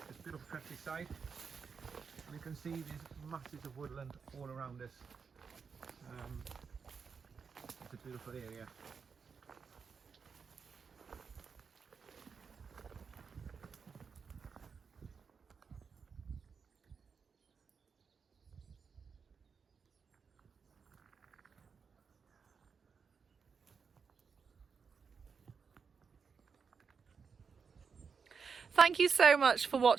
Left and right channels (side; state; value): left; quieter; 5.8 dB